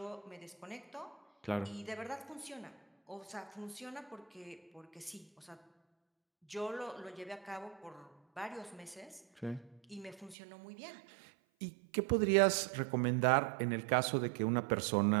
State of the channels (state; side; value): drops out; left; at 10.4 s